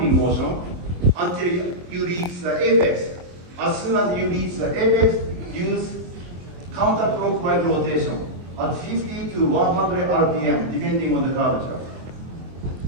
motion until you reach the apex. As soon as you reach the apex, use counterclockwise rotation at 50 to 100 RPM, depending on the curvature.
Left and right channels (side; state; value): left; late; 23 ms